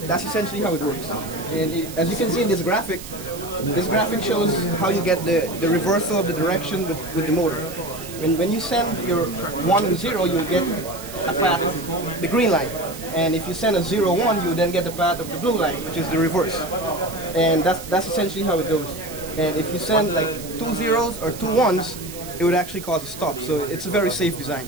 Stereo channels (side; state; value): right; noise; hiss, 14 dB below the sound